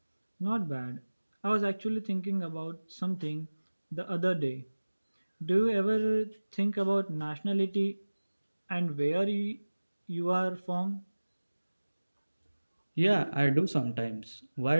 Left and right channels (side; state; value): both; inverted; correlation -1.00